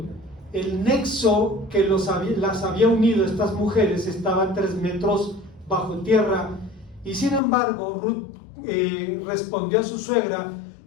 el nexo que las había unido a estas mujeres estaba a 3 metros bajo tierra, y sin embargo Ruth respondió a su suegra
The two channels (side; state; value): right; drops out; at 7.4 s